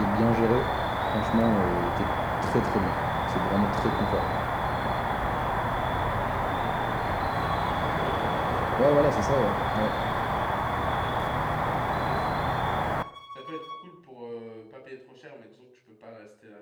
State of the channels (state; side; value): identical; both; correlation 1.00